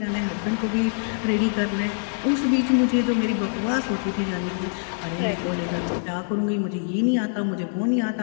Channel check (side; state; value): right; silent; digital silence